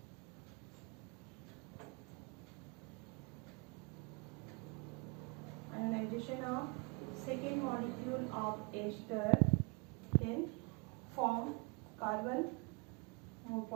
Ionization of second molecule of ester can form carbon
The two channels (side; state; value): left; quieter; 32.2 dB